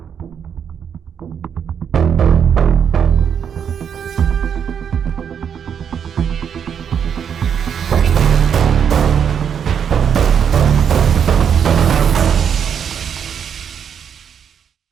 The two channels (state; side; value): quieter; left; 7.9 dB